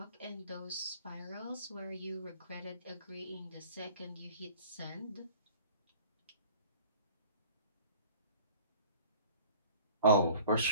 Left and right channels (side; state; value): both; inverted; correlation -0.47